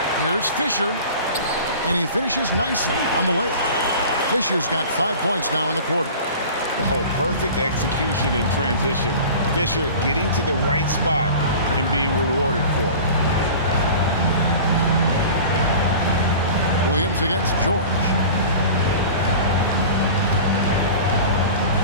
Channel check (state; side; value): inverted; both; correlation -0.39